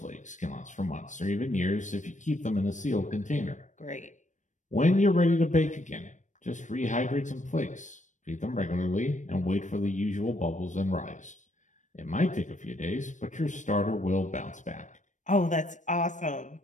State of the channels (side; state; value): right; late; 0.36 ms